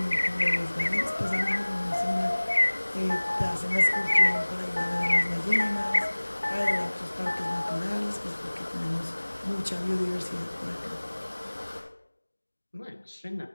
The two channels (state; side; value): inverted; both; correlation -1.00